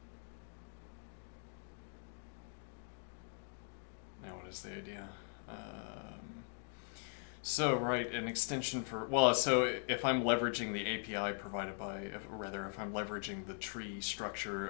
Now what is the idea? So, right, an extension for, well, so if I'm leveraging the API provided by, if I'm leveraging the tree structure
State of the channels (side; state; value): right; silent; 51 dB below the other